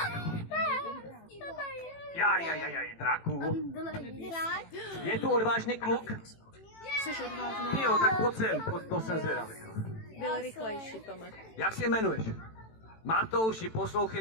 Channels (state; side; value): late; right; 18 ms